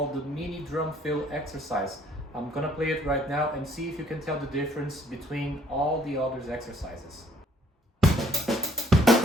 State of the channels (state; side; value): normal; both; correlation 0.61